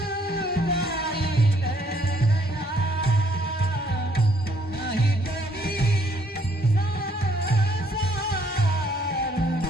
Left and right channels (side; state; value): both; normal; correlation 0.66